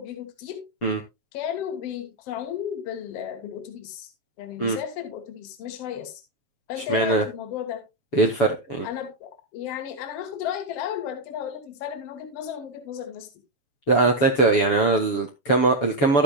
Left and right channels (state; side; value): late; right; 7.0 ms